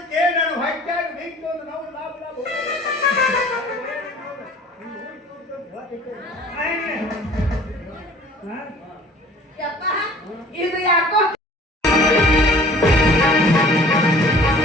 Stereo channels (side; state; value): both; normal; correlation 0.49